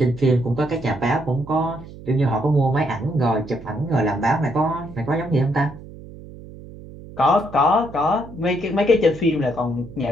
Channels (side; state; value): right; noise; hum, 16 dB below the sound